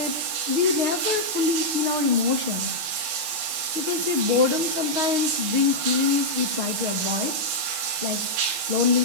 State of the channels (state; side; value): late; left; 6.4 ms